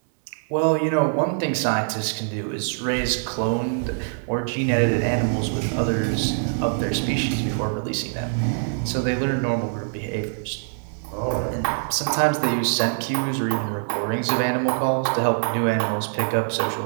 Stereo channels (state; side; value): silent; left; digital silence